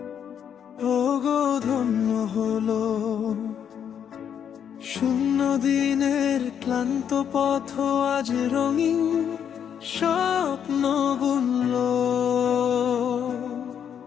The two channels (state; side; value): quieter; right; 8.5 dB